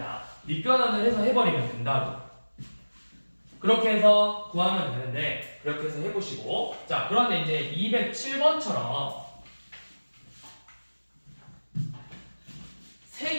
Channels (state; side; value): inverted; both; correlation -1.00